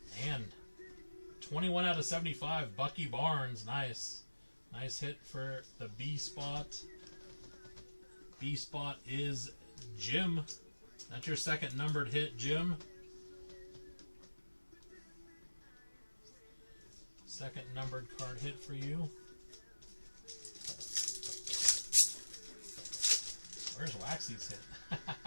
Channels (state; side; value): inverted; both; correlation -1.00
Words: And 21 out of 75. Bucky Barnes. Nice. Nice hit for the B spot. B spot is Jim. That's your second numbered hit, Jim. Second numbered card hit for you. Where's Waxy's hit?